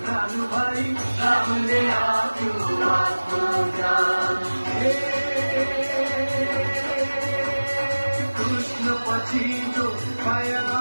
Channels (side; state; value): both; inverted; correlation -1.00